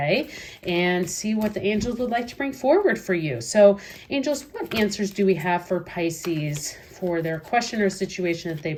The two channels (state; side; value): identical; both; correlation 1.00